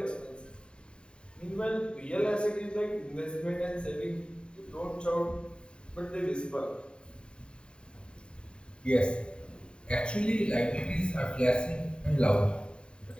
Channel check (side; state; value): right; late; 0.051 ms